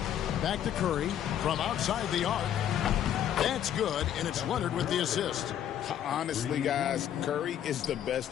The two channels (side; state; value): right; quieter; 10.2 dB